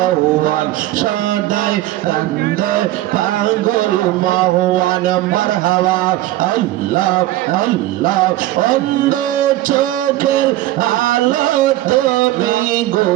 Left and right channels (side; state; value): left; quieter; 15.6 dB